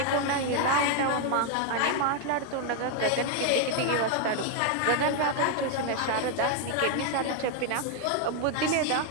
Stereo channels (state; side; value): different; both; correlation 0.01